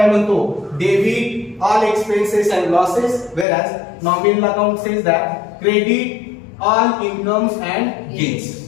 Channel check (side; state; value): right; drops out; at 3.5 s